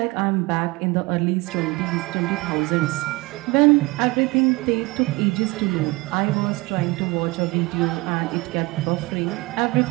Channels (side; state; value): left; quieter; 23.2 dB